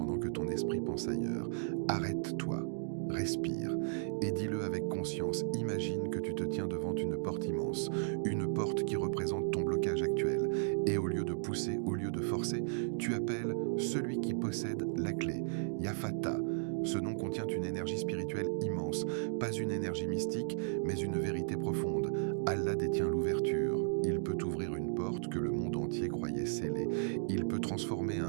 que ton esprit pense ailleurs. Arrête-toi. Respire et dis-le avec conscience. Imagine que tu te tiens devant une porte immense, une porte qui représente ton blocage actuel. Et au lieu de pousser, au lieu de forcer, tu appelles celui qui possède la clé, Yafata. Ce nom contient une énergie spirituelle immense, pas une énergie mystique, mais une vérité profonde. Allah détient l'ouverture. Il peut ouvrir une porte que le monde entier croyait scellée. Il peut transformer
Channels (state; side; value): silent; left; digital silence